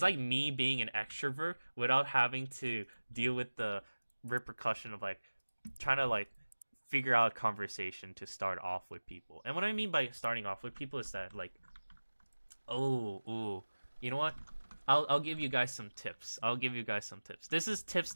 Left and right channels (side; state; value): both; inverted; correlation -1.00